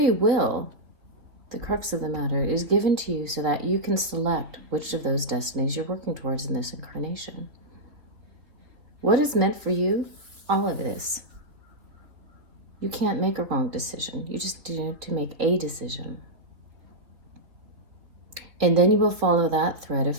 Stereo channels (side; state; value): left; late; 3.6 ms